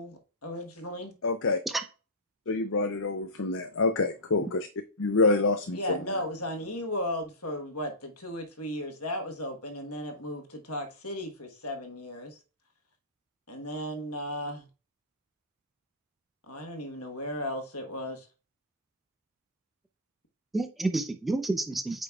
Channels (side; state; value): both; normal; correlation -0.12